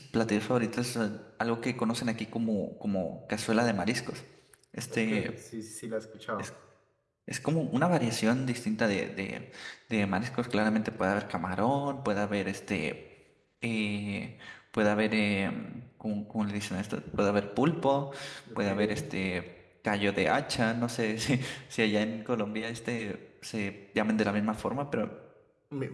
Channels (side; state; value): both; identical; correlation 1.00